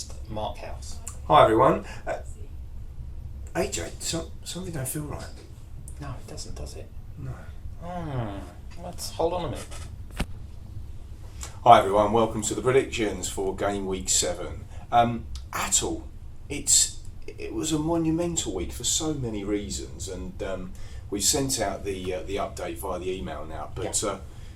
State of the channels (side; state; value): both; identical; correlation 1.00